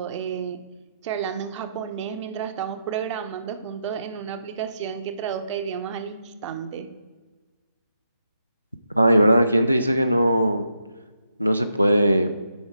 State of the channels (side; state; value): both; inverted; correlation -0.81